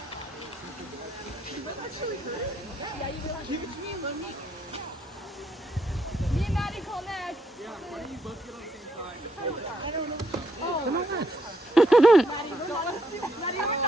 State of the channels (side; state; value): both; normal; correlation 0.75